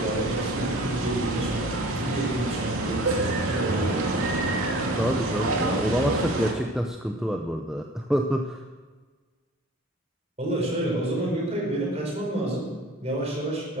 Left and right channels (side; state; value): both; normal; correlation 0.46